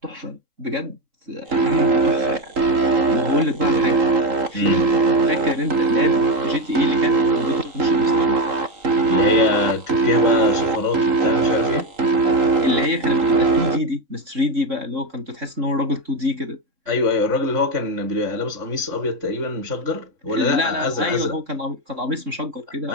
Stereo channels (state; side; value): late; left; 3.8 ms